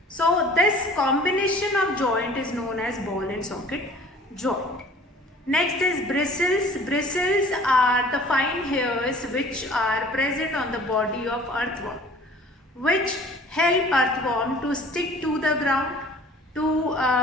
So this combination of joint is known as ball and socket joint. Next is bristles. Bristles are the fine hairs which are present on the body of earthworm, which help earthworm to stick to the ground,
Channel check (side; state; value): both; normal; correlation 0.49